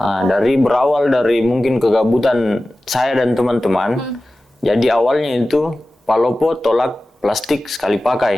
Berawal dari mungkin kegabutan saya dan teman-teman. Jadi awalnya itu Palopo tolak plastik sekali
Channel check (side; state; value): both; normal; correlation 0.96